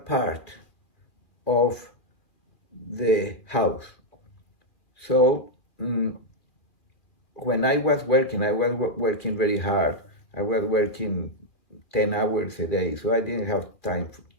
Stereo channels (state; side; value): late; right; 2.4 ms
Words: of the house. So when I was working very hard. I was working 10 hours a day, so I didn't have time